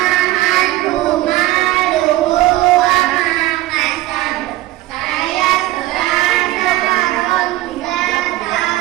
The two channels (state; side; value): quieter; left; 17.0 dB